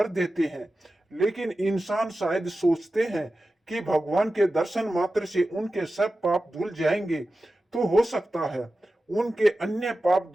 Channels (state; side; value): normal; both; correlation 0.94